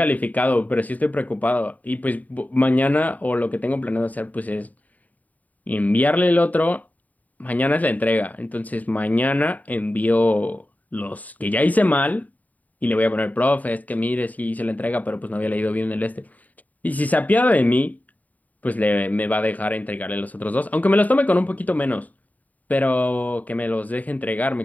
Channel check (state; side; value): late; right; 0.075 ms